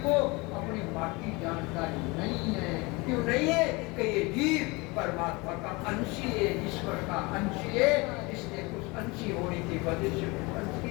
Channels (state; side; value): quieter; right; 25.4 dB